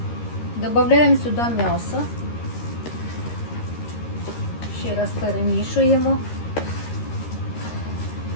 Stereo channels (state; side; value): late; right; 13 ms